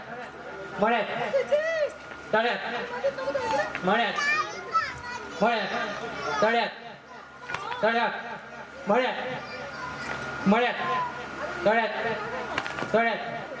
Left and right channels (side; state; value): both; identical; correlation 1.00